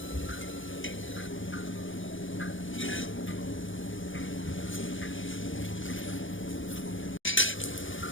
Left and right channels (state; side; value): late; right; 0.57 ms